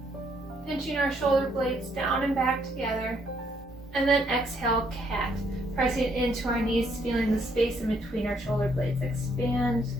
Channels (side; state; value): both; normal; correlation 0.70